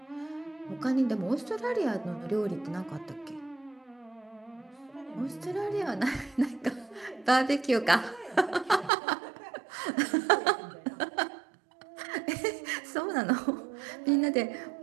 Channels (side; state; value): left; drops out; at 8.9 s